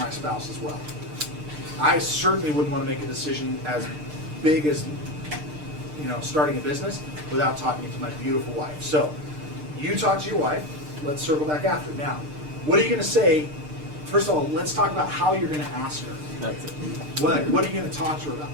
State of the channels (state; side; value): late; left; 6.6 ms